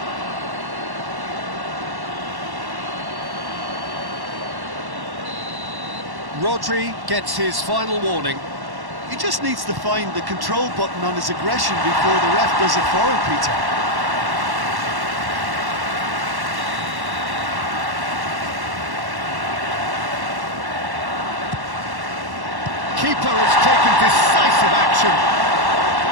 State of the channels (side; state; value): left; late; 1.1 ms